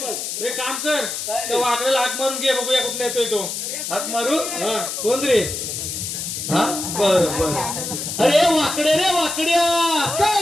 बघ. एक काम कर, काय रे? त्या वाकड्याला हाक मारून घे, बघूया कुठला येतोय तो. हाक मारू? हा. कोण रे? हा बर बर. अरे वाकड्या रे वाकड्या, काय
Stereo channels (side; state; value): left; noise; hiss, 5 dB below the sound